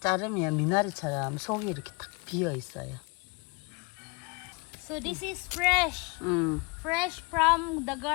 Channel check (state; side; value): quieter; right; 28.6 dB